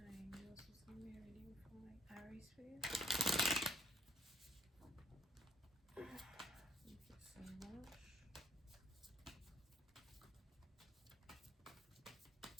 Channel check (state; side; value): normal; both; correlation 0.67